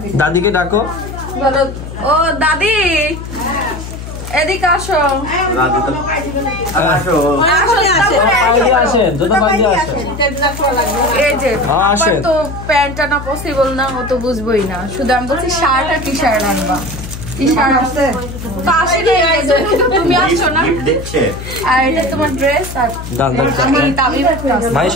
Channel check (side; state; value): left; noise; hum, 10 dB below the sound